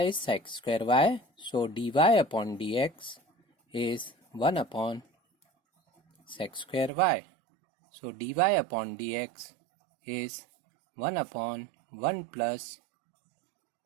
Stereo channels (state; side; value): drops out; left; at 6.9 s